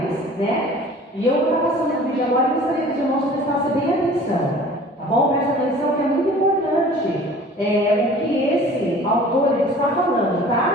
né? E eu vou estar passando o vídeo agora e gostaria que os irmãos prestassem bem atenção, tá bom? Presta atenção que é muito importante o que esse autor ele está falando, tá?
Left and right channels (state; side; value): normal; both; correlation 0.46